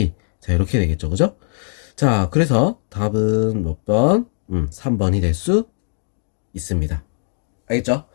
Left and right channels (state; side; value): silent; right; digital silence